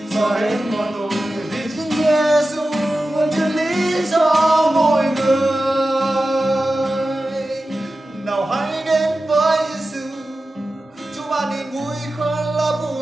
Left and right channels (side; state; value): both; normal; correlation 0.94